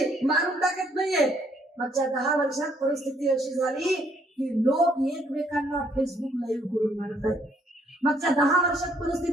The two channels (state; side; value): normal; both; correlation 0.67